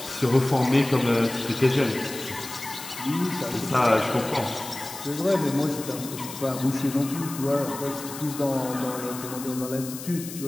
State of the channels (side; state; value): left; noise; hiss, 11 dB below the sound